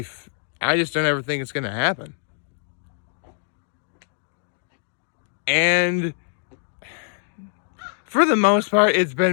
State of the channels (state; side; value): silent; right; digital silence